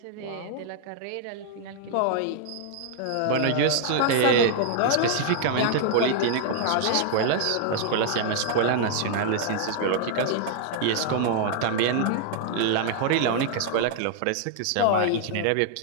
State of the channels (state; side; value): different; both; correlation -0.01